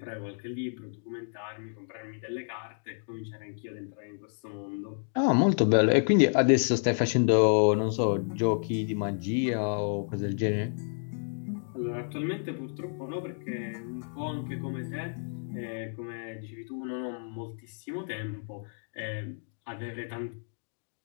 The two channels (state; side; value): silent; right; digital silence